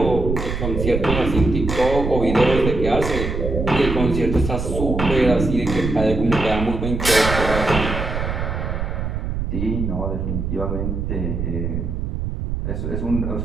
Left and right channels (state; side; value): noise; right; rumble, 3 dB below the sound